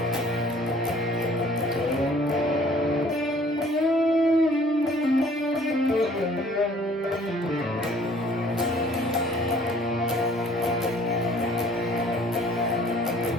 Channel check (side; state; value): both; normal; correlation 0.55